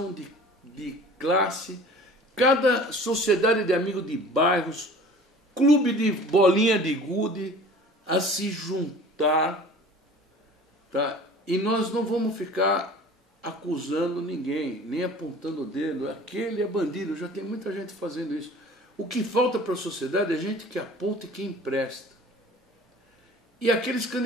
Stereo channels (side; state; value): both; normal; correlation 0.45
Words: de classe, cada sociedade de amigos de bairros, clube de bolinha de gude, a se juntar, tá? E nós não vamos ficar acusando ninguém, nem apontando o dedo, aquele é bandido, já tem muita gente fazendo isso. O que falta para a sociedade é gente que aponta e que empresta. E aqueles